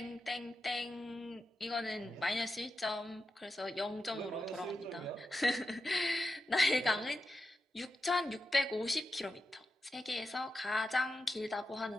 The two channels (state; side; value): normal; both; correlation 0.90